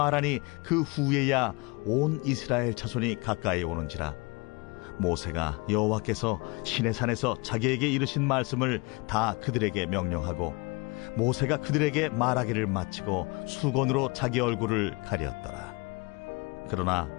그 후에야 온 이스라엘 자손이 가까이 오는지라. 모세가 여호와께서 시내산에서 자기에게 이르신 말씀을 다 그들에게 명령하고 모세가 그들에게 말하기를 마치고 수건으로 자기 얼굴을 가렸더라. 그러나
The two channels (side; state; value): right; quieter; 27.5 dB